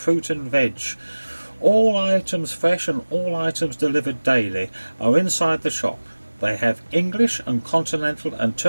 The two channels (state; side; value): inverted; both; correlation -1.00